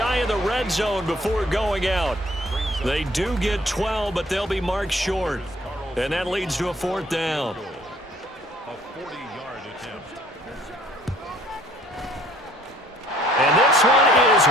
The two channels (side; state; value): both; normal; correlation 0.58